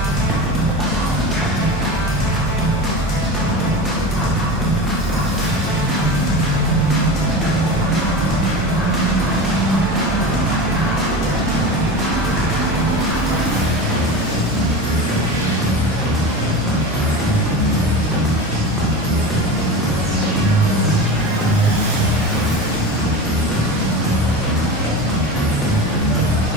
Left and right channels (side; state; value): both; normal; correlation 0.28